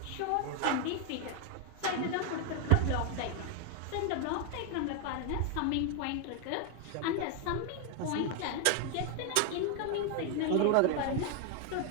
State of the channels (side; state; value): both; different; correlation 0.01